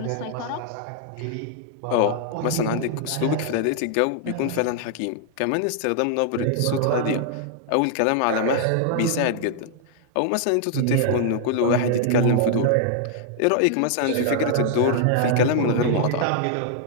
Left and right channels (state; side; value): different; both; correlation 0.00